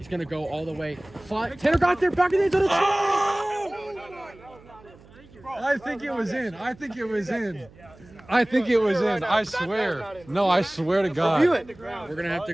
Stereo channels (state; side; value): noise; right; hum, 24 dB below the sound